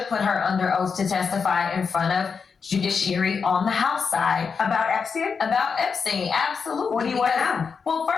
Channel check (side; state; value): right; quieter; 5.7 dB